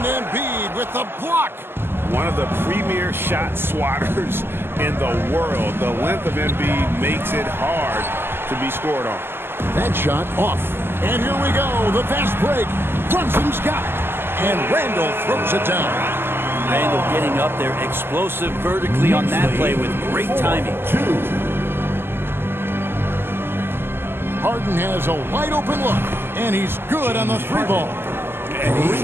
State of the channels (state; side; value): late; left; 0.11 ms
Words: Embiid with the block. One of the premier shot swatters in the world. The length of Embiid makes it hard to be scored on. That shot off. And here we go. The fast break. Brunson's got it. And Randall throws it down. Randall getting up there, explosive vertically on that play with great timing. Harden has a wide open look, and he's good on the three ball. And he's